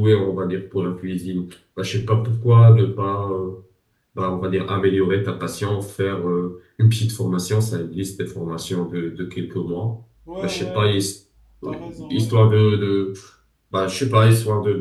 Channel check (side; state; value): both; identical; correlation 1.00